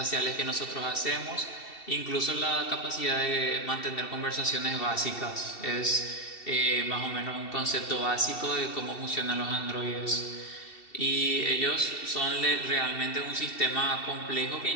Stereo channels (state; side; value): late; right; 2.7 ms